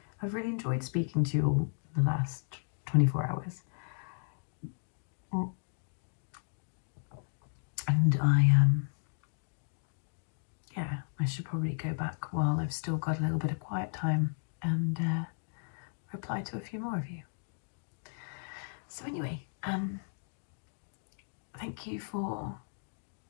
I've really enjoyed speaking to you all the last 24 hours. And yeah, I should probably go back while I've still got a little bit of quiet time and reply to a few more of you. So anyway, thank you for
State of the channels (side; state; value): right; silent; digital silence